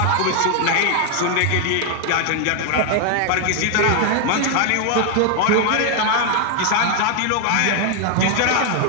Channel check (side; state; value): both; different; correlation 0.01